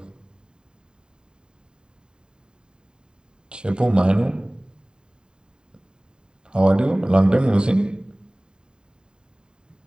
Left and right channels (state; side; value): late; left; 0.048 ms